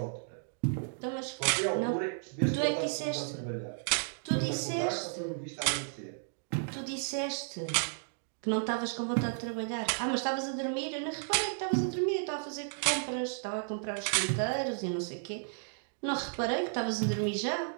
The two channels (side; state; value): left; silent; digital silence